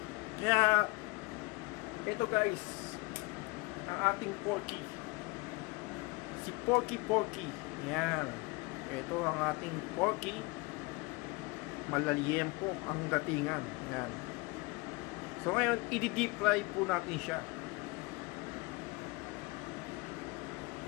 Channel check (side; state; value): right; quieter; 26.1 dB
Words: Kaya ito guys, ang ating porky. Si porky. Yan. Ito ang ating porky. Malaliyempo ang datingan. Yan. So ngayon, i-deep fry po natin siya.